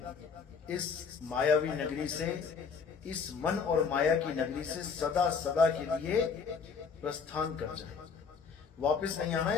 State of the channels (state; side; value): quieter; right; 5.7 dB